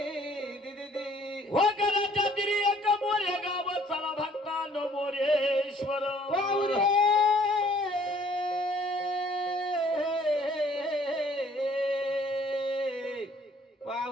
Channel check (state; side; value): normal; both; correlation 0.59